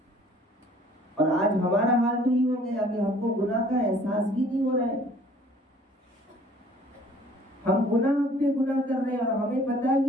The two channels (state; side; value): normal; both; correlation 0.55